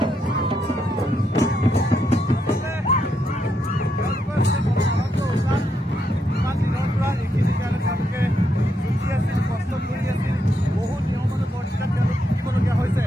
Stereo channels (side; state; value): both; normal; correlation 0.79